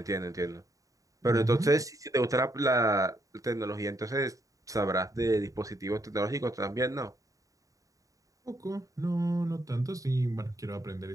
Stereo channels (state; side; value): late; left; 0.16 ms